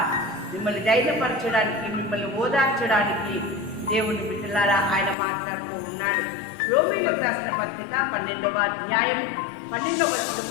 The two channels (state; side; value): drops out; right; at 5.2 s